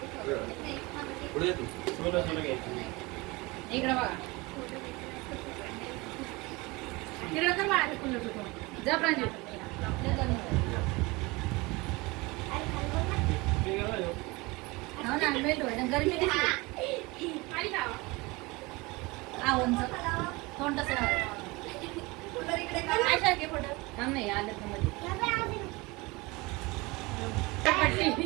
पुढे ये तू. इकडे बघा. इकडे कर बाळा ते कुल्लू तू. जा प्रांजू. हो ना मेल्ट व्हायला गरमी दिसली. उंच तोंड तसं थांब नाही आलं तर मध्ये.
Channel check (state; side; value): quieter; left; 24.0 dB